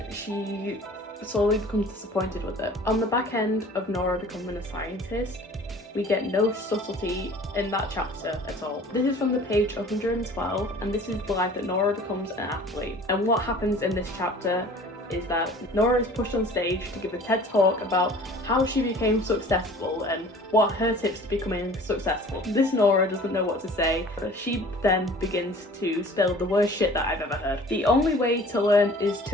she slowly becomes disappointed with it. On the back end of Nora becoming a scientist, we get no subtlety in that chapter at all. This is from the page 112, and this is the life that Nora becomes an athlete. And what happens in this chapter is that Nora is pushed on stage to give a TED talk about how she became successful and what her tips to becoming successful. This Nora doesn't know what to say, but she then begins to spill the worst shit that I've ever heard. The only way to learn is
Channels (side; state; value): both; normal; correlation 0.47